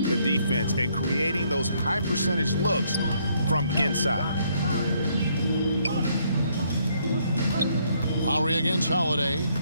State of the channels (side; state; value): both; inverted; correlation -0.70